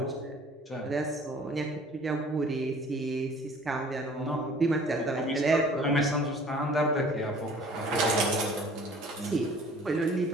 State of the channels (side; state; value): both; normal; correlation 0.51